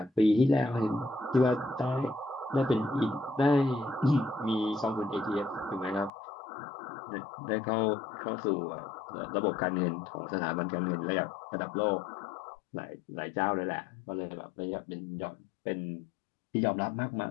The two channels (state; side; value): drops out; right; at 6.1 s